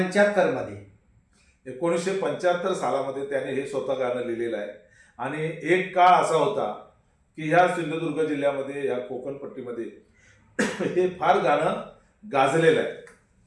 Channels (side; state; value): both; identical; correlation 1.00